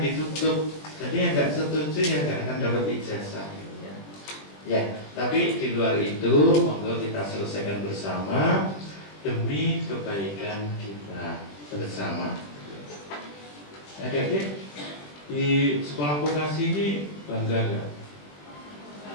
Jadi yang nggak setuju yang nggak akan dapat ijazah. Ya, tapi di luar itu, monggo kita selesaikan bersama demi kebaikan kita bersama. Adik-adik di sekolah vokasi ini bangga nggak?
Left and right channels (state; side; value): late; right; 20 ms